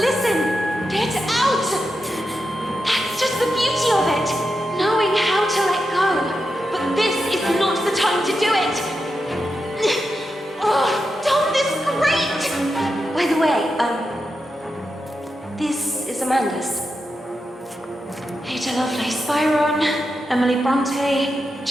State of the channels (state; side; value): normal; both; correlation 0.88